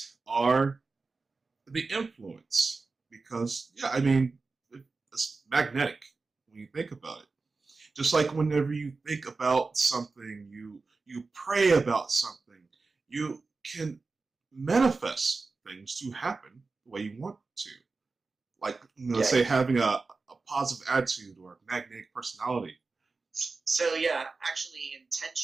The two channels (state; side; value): quieter; left; 4.0 dB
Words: are the influence, because, it's magnetic when you think about it. Just like whenever you think about something, you pray about something, you can manifest things to happen the way you want to. Like, say having a positive attitude or a magnetic personality. So actually